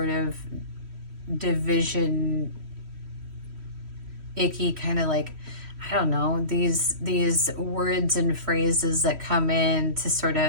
of division, icky kind of, like, I don't know, these words and phrases that come in to sort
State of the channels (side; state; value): left; late; 3.1 ms